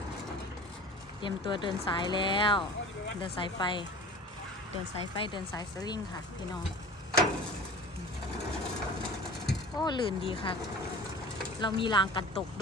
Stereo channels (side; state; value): both; normal; correlation 0.39